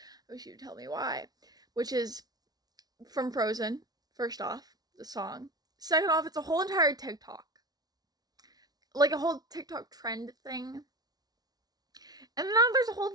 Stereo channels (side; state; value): left; late; 0.19 ms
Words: wish you'd tell me why. Which is from Frozen. First off, the song. Second off, it's a whole entire TikTok, like a whole TikTok trend thing. And now there's a whole